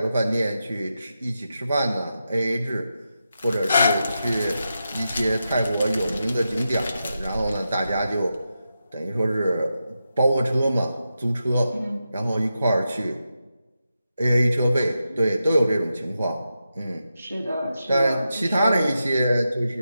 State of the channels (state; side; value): inverted; both; correlation -0.89